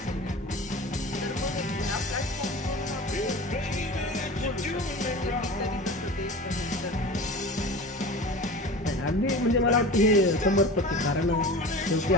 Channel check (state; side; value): normal; both; correlation 0.35